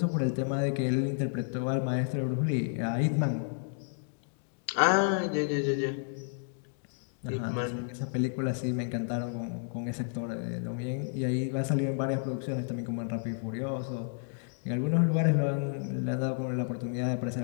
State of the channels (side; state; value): right; silent; digital silence